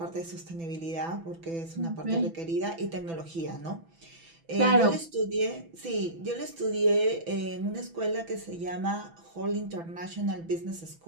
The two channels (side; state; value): left; late; 6.0 ms